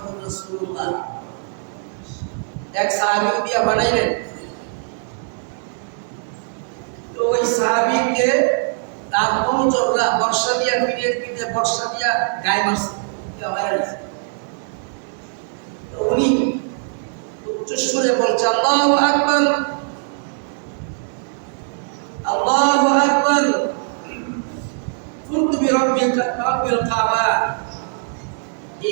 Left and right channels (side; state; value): left; silent; 65 dB below the other